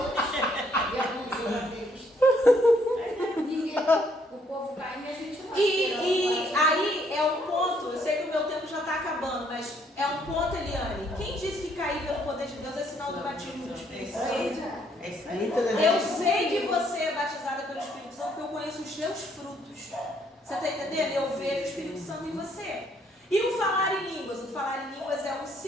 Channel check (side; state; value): both; normal; correlation 0.68